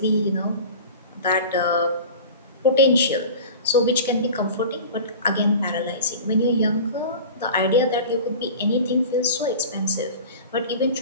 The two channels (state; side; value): inverted; both; correlation -0.36